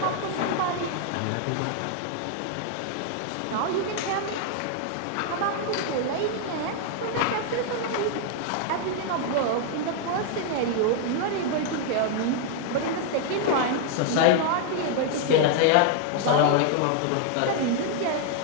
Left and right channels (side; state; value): both; different; correlation 0.00